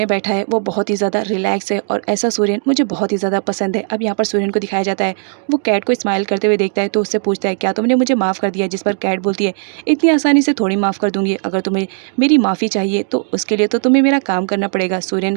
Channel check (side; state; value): left; silent; 62 dB below the other